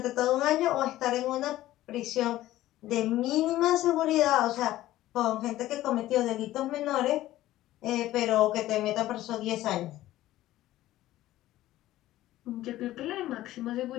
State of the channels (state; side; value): quieter; right; 15.1 dB